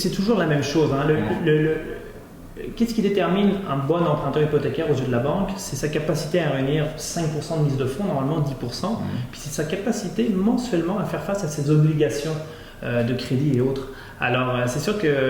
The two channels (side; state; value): both; identical; correlation 1.00